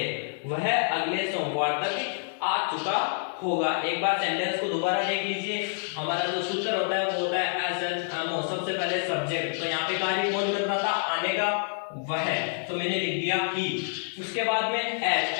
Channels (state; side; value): silent; right; digital silence